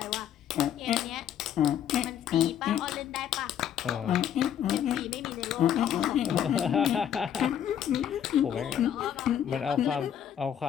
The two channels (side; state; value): right; quieter; 9.7 dB